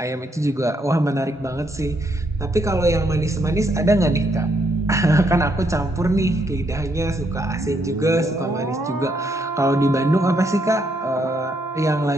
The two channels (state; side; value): normal; both; correlation 0.75